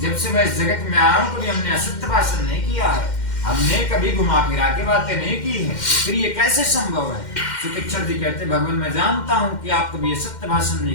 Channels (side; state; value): right; late; 2.1 ms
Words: जब से मैं इस जगत में आया हूँ कभी हमने असत्य भाषण नहीं किया है, हमने कभी घुमा फिरा के बातें नहीं की है, फिर ये कैसे संभव है। सुतीक्षण जी कहते हैं भगवान मैं जानता हूँ कि आप कभी सत्य भाषण